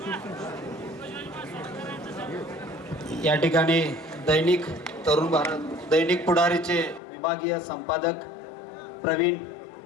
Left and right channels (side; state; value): right; drops out; at 7.0 s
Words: या ठिकाणी दैनिक तरुण भारत दैनिक पुढारीचे विभागीय संपादक प्रवीण